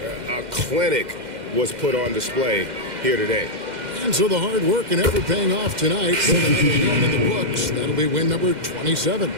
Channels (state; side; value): late; left; 2.1 ms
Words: A clinic was put on display here today. And so the hard work and effort paying off tonight. So another win in the books. That'll be win number 27.